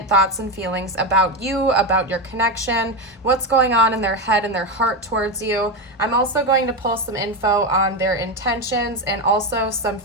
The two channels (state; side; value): normal; both; correlation 0.13